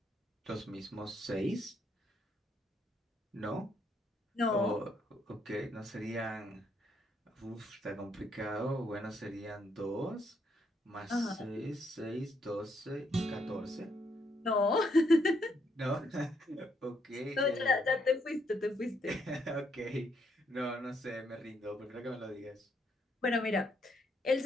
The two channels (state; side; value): normal; both; correlation 0.74